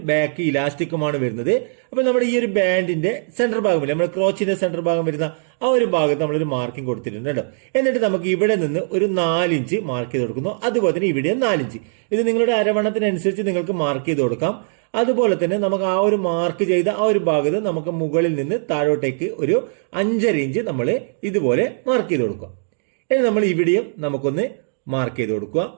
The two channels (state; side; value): silent; left; digital silence